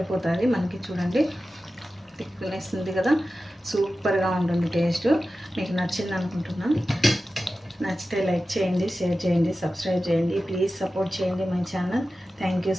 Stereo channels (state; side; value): normal; both; correlation 0.94